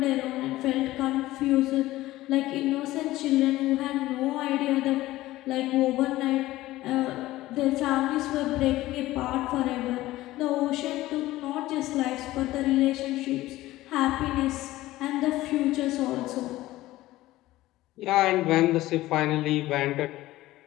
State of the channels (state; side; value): quieter; right; 16.7 dB